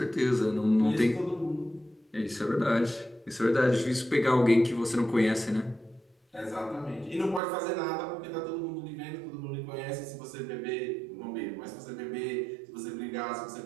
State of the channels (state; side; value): drops out; left; at 7.4 s